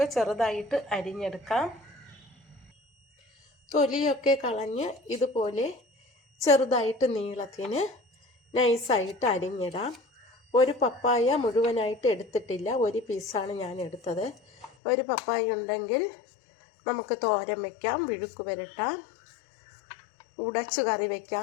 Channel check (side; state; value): right; drops out; at 14.7 s